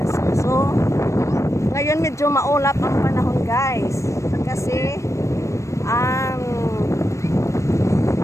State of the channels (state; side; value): late; right; 0.15 ms